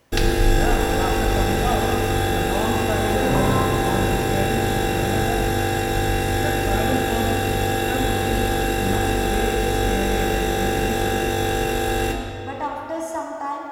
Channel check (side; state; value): both; identical; correlation 1.00